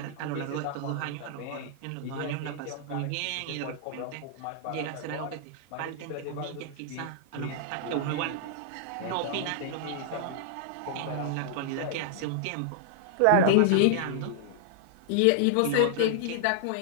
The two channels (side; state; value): both; different; correlation -0.01